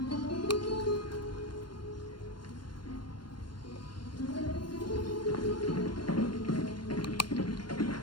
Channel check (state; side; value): late; right; 0.72 ms